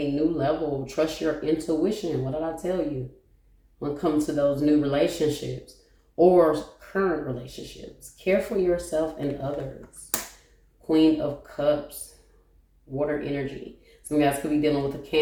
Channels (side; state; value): both; identical; correlation 1.00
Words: new level. Trust your intuition. What did I tell you? When it comes to those new relationships or current relationships, care for yourself and others. Queen of Cups, water energy. Some guys could be dealing with a